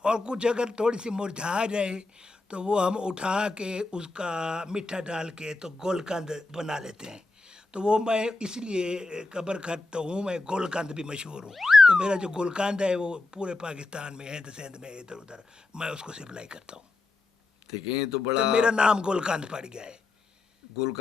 اور کچھ اگر تھوڑی سی مرجھا جائے تو وہ ہم اٹھا کے اس کا میٹھا ڈال کے تو گولکند بنا لیتے ہیں۔ تو وہ میں اس لیے قبر کھٹ تو ہوں، میں گولکند بھی مشہور ہوں۔ تو میرا جو گولکند ہے وہ پورے پاکستان میں، ہند سندھ میں، ادھر ادھر میں اس کو سپلائی کرتا ہوں۔ دیکھیں، یہ تو تو بڑا میرا نام گولکند پڑ گیا ہے۔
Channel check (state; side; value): quieter; right; 3.3 dB